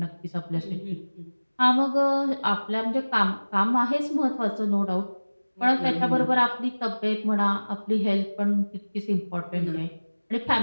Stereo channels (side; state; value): both; inverted; correlation -1.00